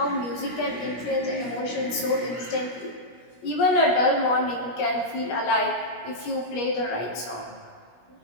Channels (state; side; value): late; right; 17 ms